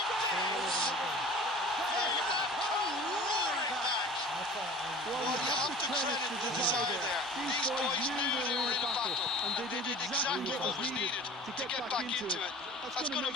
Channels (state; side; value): normal; both; correlation 0.42